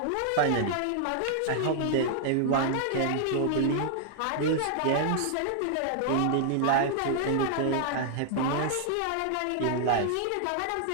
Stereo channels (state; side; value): different; both; correlation 0.00